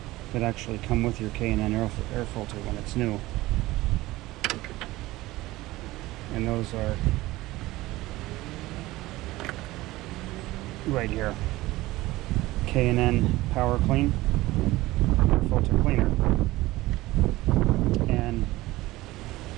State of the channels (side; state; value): left; quieter; 18.4 dB